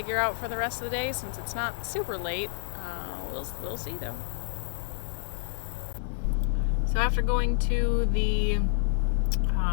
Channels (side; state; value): right; silent; digital silence